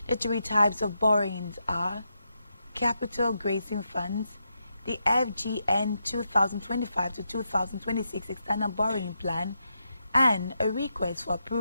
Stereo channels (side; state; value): both; inverted; correlation -0.84